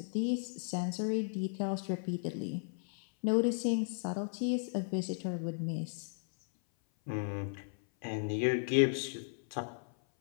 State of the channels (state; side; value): silent; right; 54 dB below the other